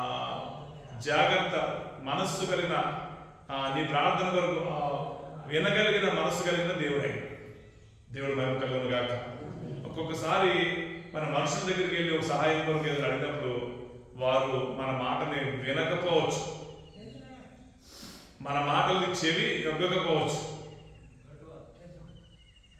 జాగ్రత్త మనస్సు కలిగిన, నీ ప్రార్థన కొరకు వినగలిగిన మనస్సు కలిగిన దేవుడై. దేవుడు మహిమ కలుగును గాక. ఒక్కొక్కసారి మన మనుషుల దగ్గరికి వెళ్ళి ఒక సహాయం కొరకు ఏదో అడిగినప్పుడు వారు మన మాటని వినకపోవచ్చు, మన మాటలకి చెవి యొగ్గకపోవచ్చు,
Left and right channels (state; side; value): identical; both; correlation 1.00